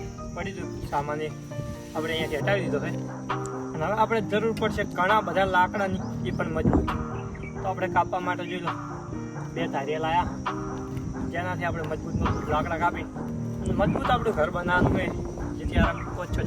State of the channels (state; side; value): identical; both; correlation 1.00